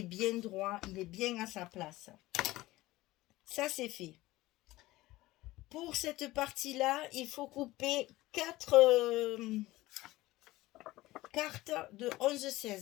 bien droit, il est bien à sa place. Ça, c'est fait. Pour cette partie-là, il faut couper 4 cartes de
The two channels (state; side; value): quieter; right; 18.2 dB